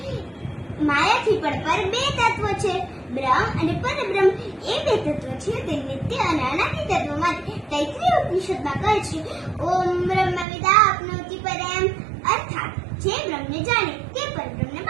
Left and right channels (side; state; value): left; drops out; at 10.5 s